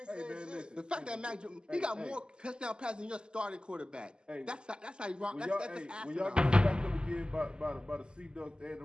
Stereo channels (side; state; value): left; late; 0.049 ms